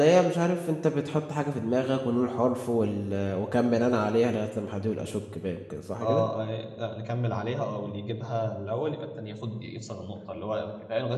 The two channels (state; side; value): identical; both; correlation 1.00